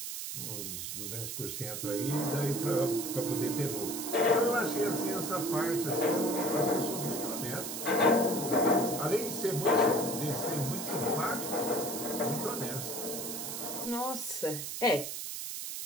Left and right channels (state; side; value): noise; right; hiss, 5 dB below the sound